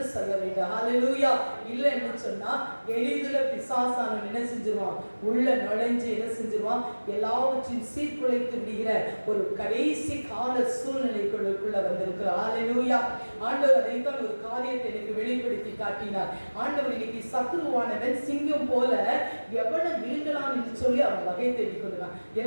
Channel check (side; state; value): both; inverted; correlation -1.00